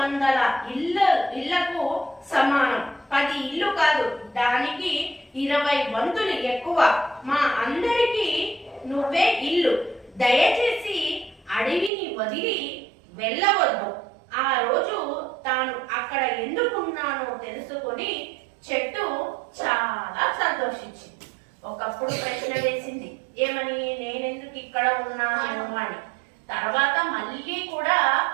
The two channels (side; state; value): left; drops out; at 11.9 s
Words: ఇళ్లకు సమానం. 10 ఇల్లు కాదు, దానికి 20 వంతులు ఎక్కువ. మా అందరికీ నువ్వే ఇల్లు. దయచేసి అడవిని వదిలి వెళ్ళవద్దు. ఆ రోజు తాను అక్కడ ఎందుకున్నానో తెలుసుకొని చెట్టు చాలా సంతోషించింది. ఒకప్పుడు ప్రశ్న వేసింది, ఏమని? నేనెందుకు ఇక్కడ ఉన్నాను అని. తర్వాత మళ్ళీ కూడా